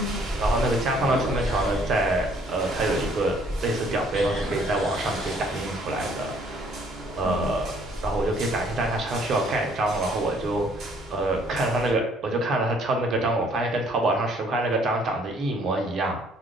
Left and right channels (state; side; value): normal; both; correlation 0.62